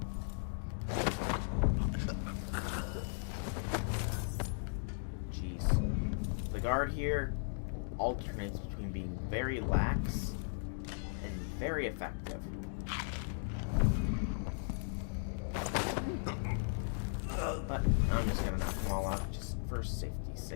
Jeez. The guard here alternates between being very lax and very effective. But I'm just gonna knock them all out just for safety's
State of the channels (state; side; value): silent; right; digital silence